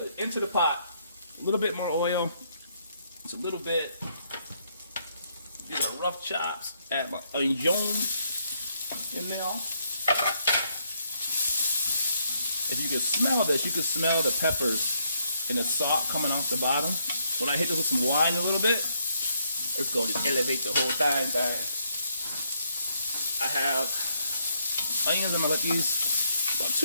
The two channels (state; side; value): inverted; both; correlation -0.73